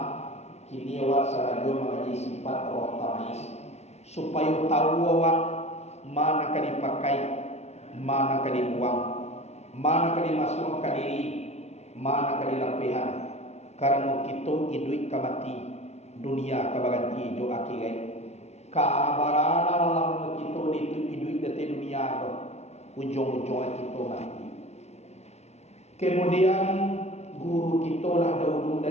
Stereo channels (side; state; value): right; late; 0.32 ms